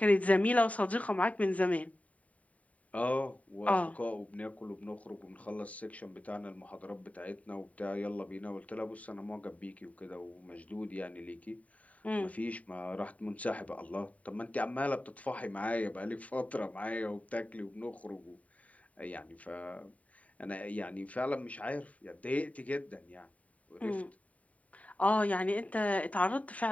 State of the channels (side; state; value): right; late; 0.069 ms